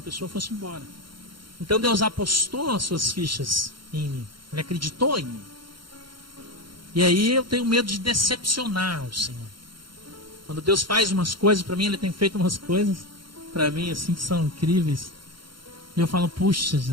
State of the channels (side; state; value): left; late; 0.73 ms